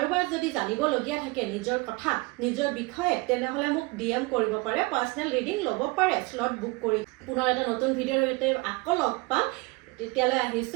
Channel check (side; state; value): left; quieter; 25.7 dB